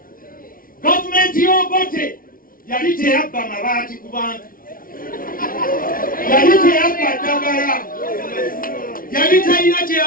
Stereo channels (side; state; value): right; late; 0.41 ms